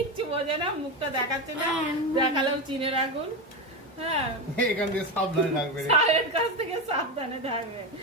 বোঝে না, মুখটা দেখাচ্ছে না, দেখালেও চিনে রাখুন। হ্যাঁ, এখান থেকে সাবধানে থাকবে, স্যারের কাছ থেকে সাবধানে থাকবে।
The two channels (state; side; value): normal; both; correlation 0.16